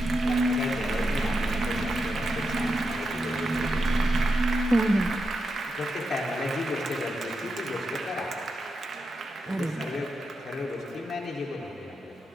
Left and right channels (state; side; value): normal; both; correlation 0.86